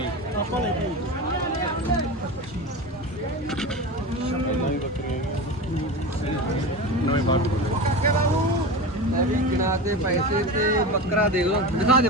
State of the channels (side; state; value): both; normal; correlation 0.26